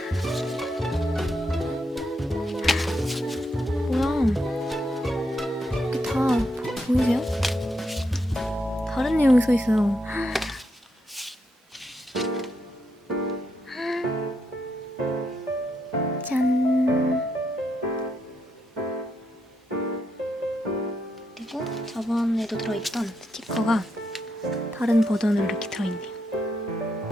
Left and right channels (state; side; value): normal; both; correlation 0.81